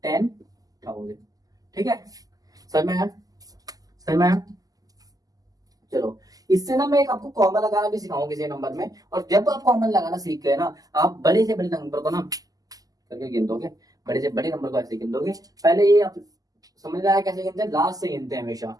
10,000। ठीक है, सर मैं सर मैं चलो इससे ना मैं एक आपको कॉमन लगाना भी सिखाऊंगा किसी नंबर में, और जब आप कॉमन लगाना सीख गए ना, आप बड़े से बड़े नंबर को ना करके गिन दोगे, बड़े से बड़े नंबर को ऐसे गिन दोगे। पहले ये आप समझ रहा है कैसे गिनते हैं, लास्ट से गिनते हैं हमेशा।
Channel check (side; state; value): left; late; 0.17 ms